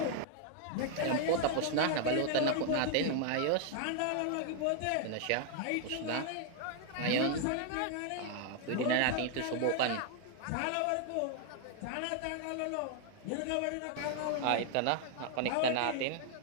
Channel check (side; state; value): both; different; correlation 0.00